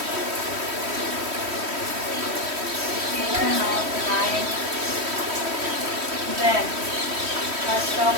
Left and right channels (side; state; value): left; late; 3.1 ms